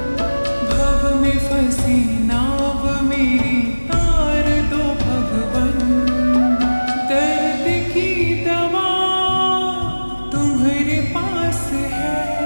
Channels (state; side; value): inverted; both; correlation -1.00